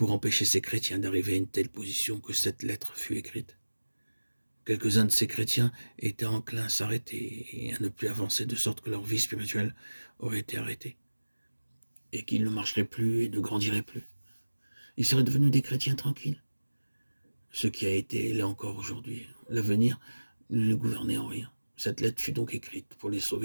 empêcher ces chrétiens d'arriver à une telle position que cette lettre fut écrite. Quelques-uns de ces chrétiens étaient enclins à s'arrêter et à ne plus avancer, de sorte que leur vie spirituelle aurait été arrêtée, et qu'ils ne marcheraient plus et ne grandiraient plus. Ils seraient devenus des chrétiens tranquilles. Ce qui a été l'est encore aujourd'hui. L'avenir ne les gouvernait en rien. Cette lettre fut donc écrite pour les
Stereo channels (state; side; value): inverted; both; correlation -1.00